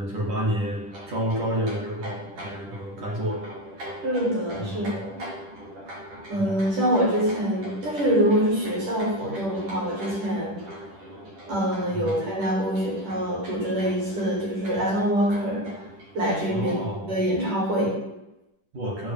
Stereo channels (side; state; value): left; late; 10 ms